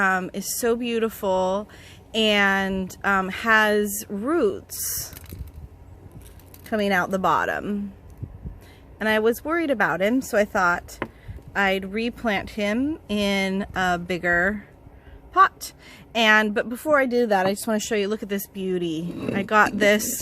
is so beautiful and has roots coming out the bottom, and I was worried about him, so I thought I'd replant him in a bigger pot. But before I do that, I just want to show you, look at this beauty. I got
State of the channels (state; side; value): identical; both; correlation 1.00